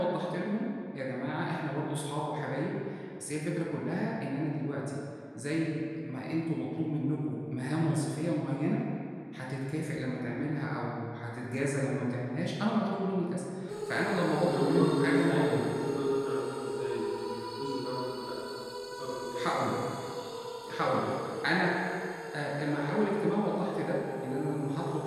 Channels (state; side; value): identical; both; correlation 1.00